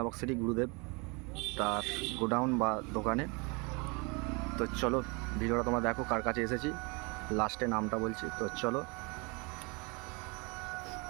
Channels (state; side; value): quieter; left; 29.7 dB